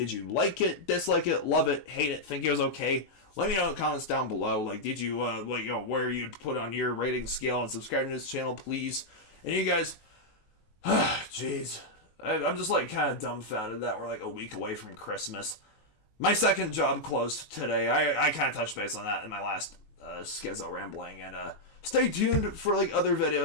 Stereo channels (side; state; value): right; late; 19 ms